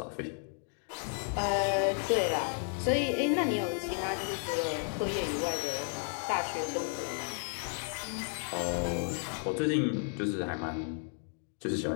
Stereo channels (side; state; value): right; silent; 56 dB below the other